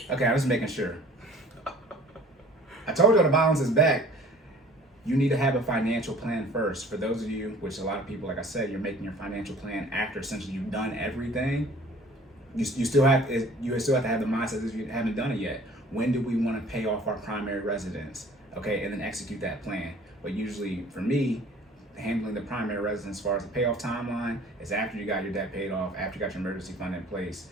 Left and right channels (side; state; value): both; normal; correlation 0.50